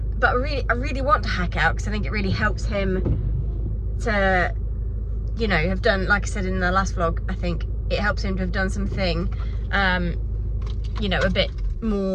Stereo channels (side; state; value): both; identical; correlation 1.00